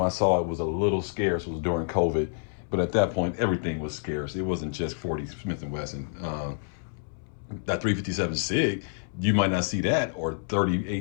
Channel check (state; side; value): silent; right; 59 dB below the other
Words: I saw it was a little scarce was during COVID, but at that point everything was scarce. It wasn't just 40 Smith & Wesson. That 357 SIG, you might not see that, or